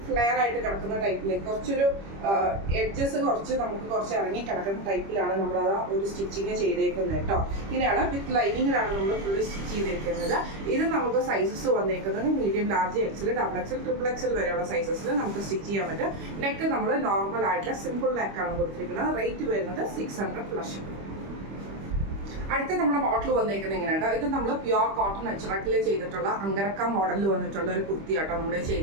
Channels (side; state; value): left; late; 25 ms